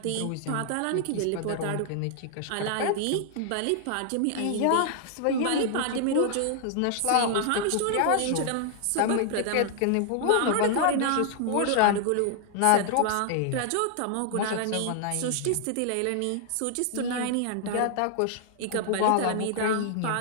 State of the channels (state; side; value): different; both; correlation 0.00